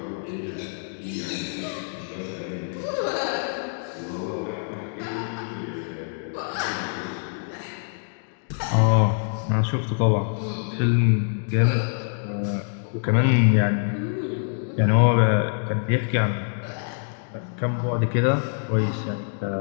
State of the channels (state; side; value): silent; right; digital silence